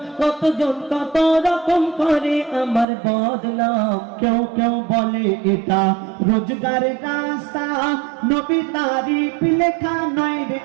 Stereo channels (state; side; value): drops out; left; at 2.9 s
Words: কতজন কত রকম করে আমার বদনাম কেউ কেউ বলে এটা রোজগারের রাস্তা নবী তারিফ লেখা নয় রে